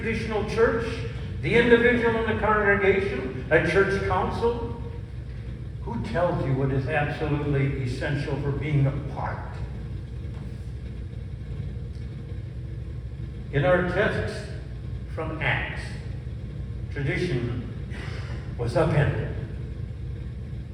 church? The individual in the congregation? A church council? Who tells you what is absolutely essential for being a part? In our text from Acts, tradition was upended.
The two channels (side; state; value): both; identical; correlation 1.00